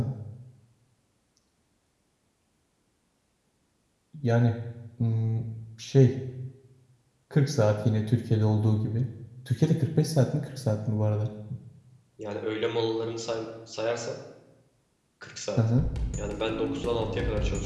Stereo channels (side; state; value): both; identical; correlation 1.00